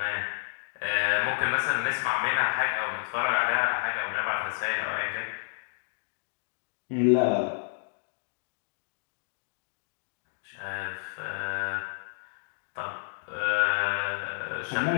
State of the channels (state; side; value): silent; right; digital silence